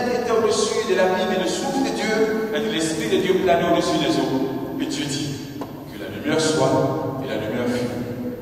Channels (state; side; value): identical; both; correlation 1.00